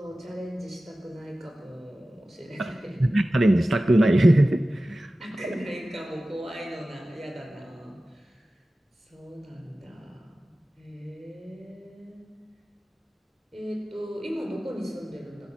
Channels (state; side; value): normal; both; correlation 0.96